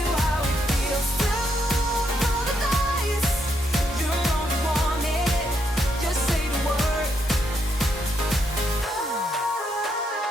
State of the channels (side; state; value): both; normal; correlation 0.77